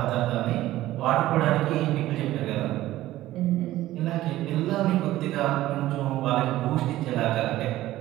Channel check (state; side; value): quieter; left; 15.3 dB